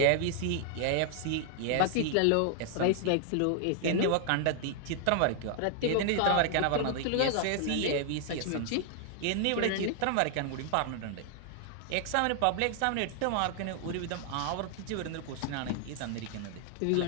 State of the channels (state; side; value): different; both; correlation 0.00